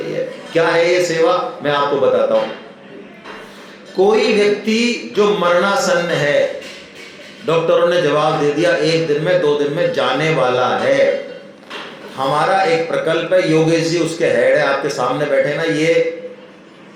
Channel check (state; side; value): identical; both; correlation 1.00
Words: है। क्या है ये सेवा, मैं आपको बताता हूं। कोई व्यक्ति जो मरणासन्न है, डॉक्टरों ने जवाब दे दिया 1 दिन में 2 दिन में जाने वाला है, हमारा एक प्रकल्प है, योगेश जी उसके हेड है, आपके सामने बैठे ना, ये